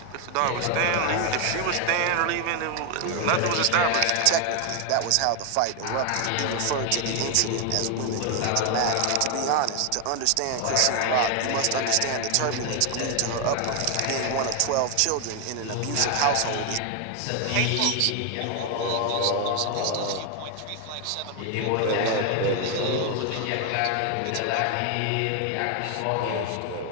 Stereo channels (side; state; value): both; different; correlation 0.01